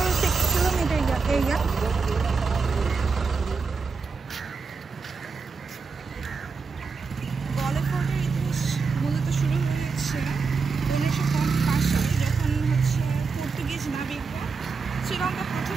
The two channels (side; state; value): left; quieter; 4.8 dB